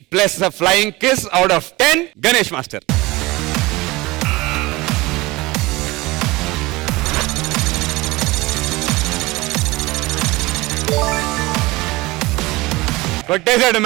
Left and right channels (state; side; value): quieter; left; 21.3 dB